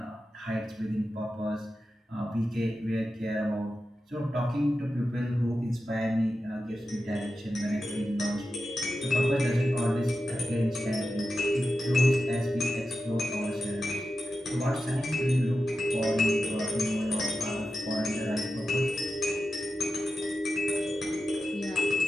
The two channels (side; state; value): both; normal; correlation 0.91